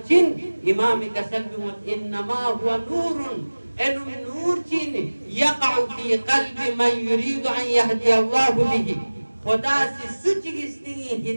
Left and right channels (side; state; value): both; inverted; correlation -1.00